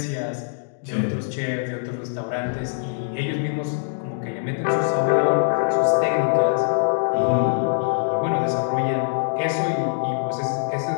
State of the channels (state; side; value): silent; right; digital silence